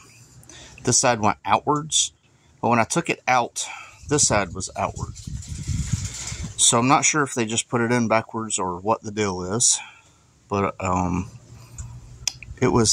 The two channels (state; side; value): identical; both; correlation 1.00